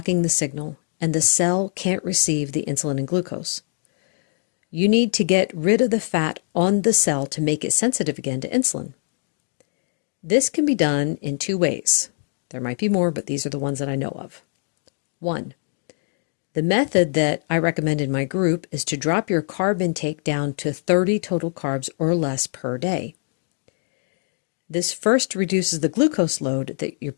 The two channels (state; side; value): silent; right; digital silence